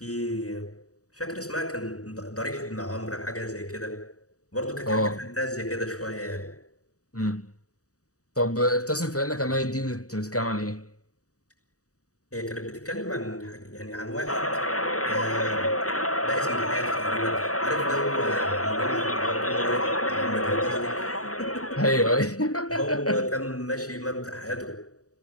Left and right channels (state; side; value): late; right; 0.66 ms